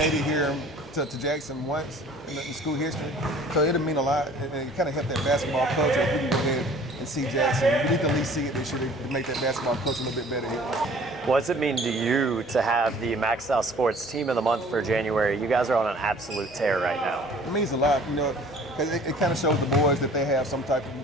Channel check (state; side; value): normal; both; correlation 0.50